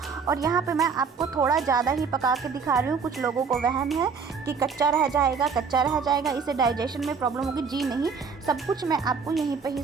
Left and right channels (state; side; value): quieter; left; 5.6 dB